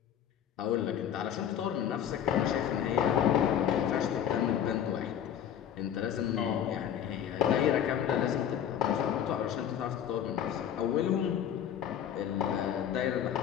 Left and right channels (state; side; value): quieter; right; 9.4 dB